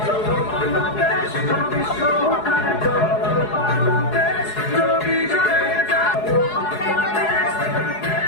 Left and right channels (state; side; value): late; right; 4.8 ms